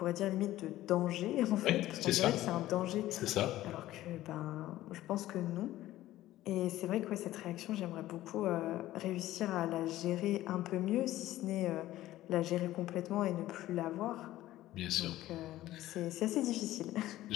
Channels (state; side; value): quieter; right; 15.0 dB